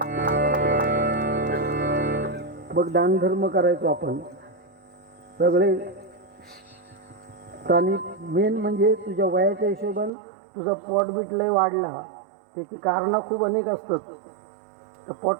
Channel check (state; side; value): drops out; left; at 10.1 s